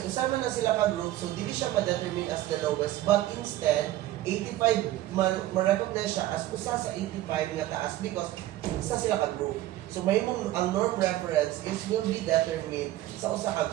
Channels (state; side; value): quieter; left; 15.0 dB